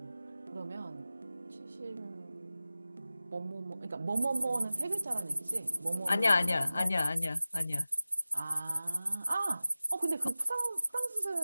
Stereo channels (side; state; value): both; inverted; correlation -0.96